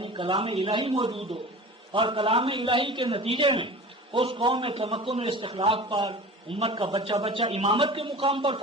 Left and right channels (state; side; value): normal; both; correlation 0.37